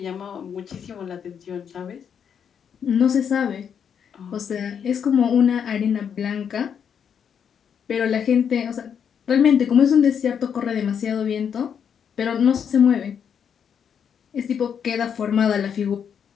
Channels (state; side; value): quieter; right; 7.7 dB